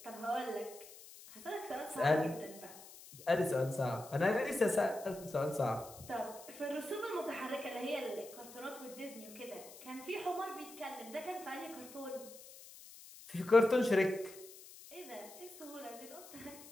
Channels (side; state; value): left; noise; hiss, 17 dB below the sound